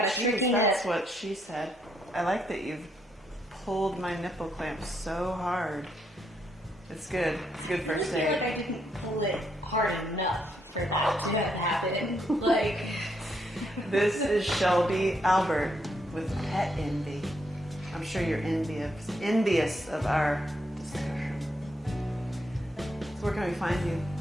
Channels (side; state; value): both; normal; correlation 0.76